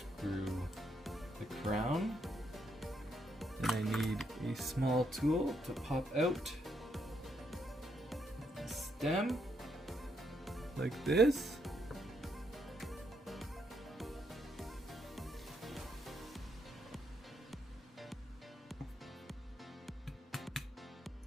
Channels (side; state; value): both; normal; correlation 0.76